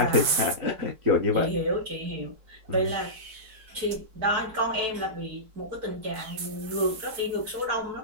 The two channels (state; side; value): late; left; 4.5 ms